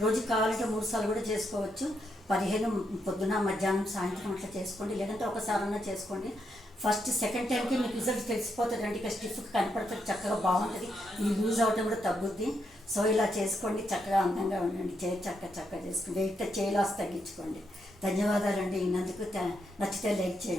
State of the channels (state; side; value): normal; both; correlation 0.80